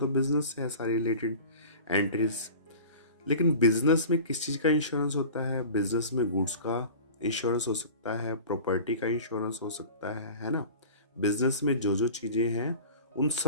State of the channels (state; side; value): inverted; both; correlation -0.38